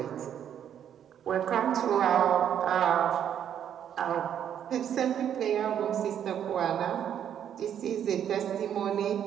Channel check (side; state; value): left; quieter; 9.4 dB